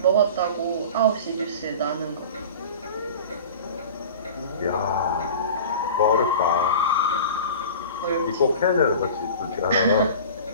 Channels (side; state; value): both; inverted; correlation -0.37